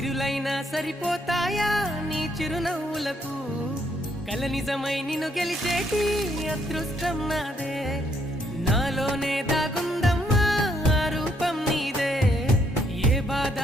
సరిపోతాయా నీ చిరునవ్వులకు కల నిజమై నిన్ను గెలిచేటి అదృష్టం నాదే నాలోనే దాగుందమ్మా ఆ రూపం నీదే ఏ బాధ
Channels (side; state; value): both; normal; correlation 0.71